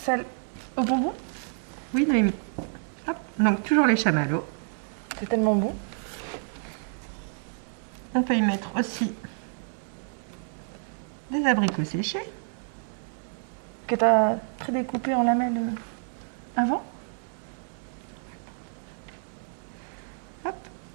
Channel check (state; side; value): silent; left; 59 dB below the other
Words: au bonbon. Oui, Noémie. Hop, donc toujours les chamallows. C'est tellement bon. On peut y mettre aussi des abricots séchés. Que tu as prédécoupé en lamelles avant. Hop,